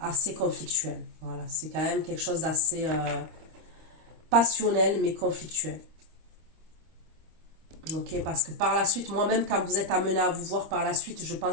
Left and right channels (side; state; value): left; late; 25 ms